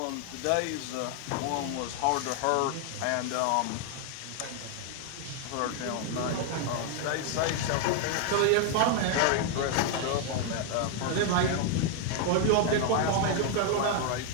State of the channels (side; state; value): both; different; correlation 0.00